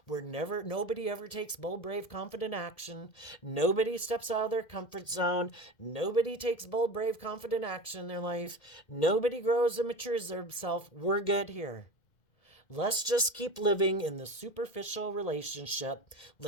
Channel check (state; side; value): late; right; 2.1 ms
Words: where nobody ever takes bold, brave, confident action. Nobody steps out of their comfort zone. Nobody takes bold, brave, confident action in their life. Nobody grows and matures themselves. We're good here. Let's just keep living in the superficial relationship.